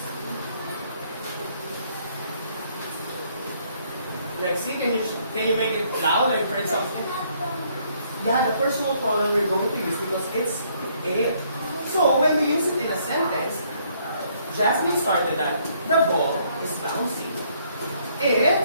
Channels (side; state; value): both; inverted; correlation -0.67